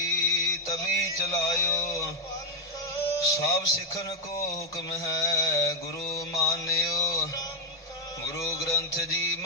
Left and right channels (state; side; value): normal; both; correlation -0.02